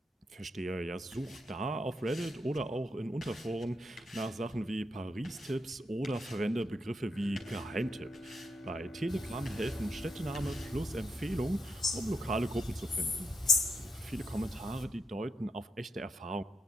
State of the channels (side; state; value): both; normal; correlation 0.82